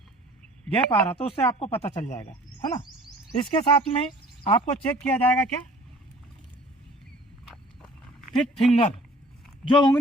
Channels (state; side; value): normal; both; correlation 0.50